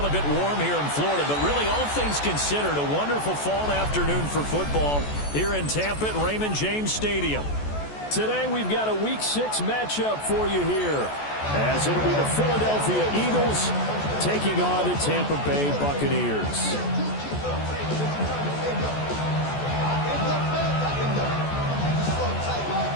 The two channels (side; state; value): right; late; 14 ms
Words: a bit warm here in Florida, but really all things considered, a wonderful fall afternoon for football here in Tampa at Raymond James Stadium. Today we've got a Week 6 matchup for you here, as it'll be the Philadelphia Eagles taking on the Tampa Bay Buccaneers.